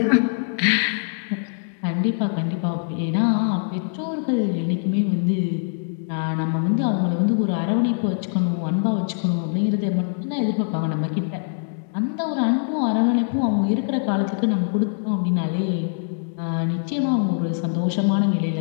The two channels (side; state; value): right; silent; digital silence